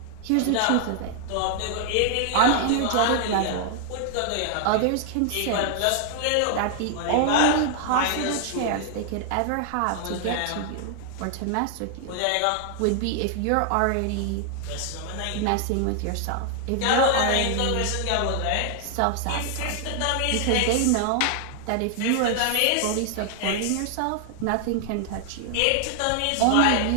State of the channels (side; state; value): both; different; correlation 0.00